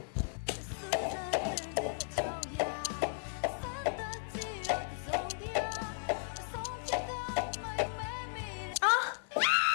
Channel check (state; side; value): silent; right; digital silence